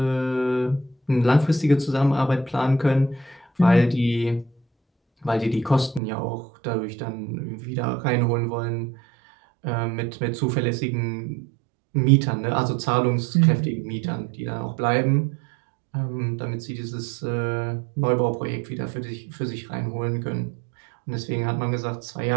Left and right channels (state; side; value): drops out; left; at 6.0 s